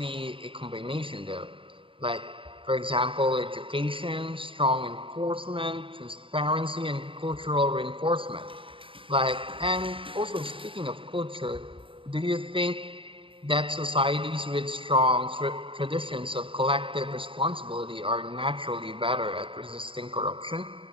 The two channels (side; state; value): left; late; 0.25 ms